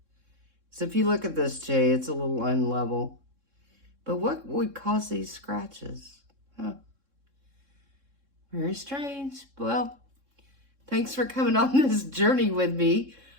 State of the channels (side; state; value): left; late; 3.6 ms